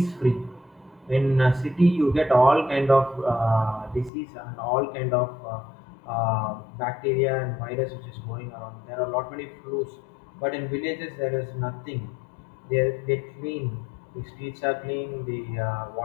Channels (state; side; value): drops out; right; at 4.1 s